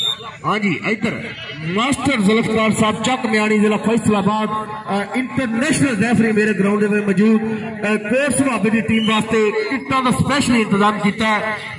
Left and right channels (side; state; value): both; identical; correlation 1.00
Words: हाँ जी, इधर मास्टर जुल्फकार साहब चक म्याणी जिला फैसलाबाद इंटरनेशनल रेफरी मेरे ग्राउंड में मौजूद। कोट सुहाबे की टीम वास्ते टिकटों का स्पेशल इंतजाम किया है,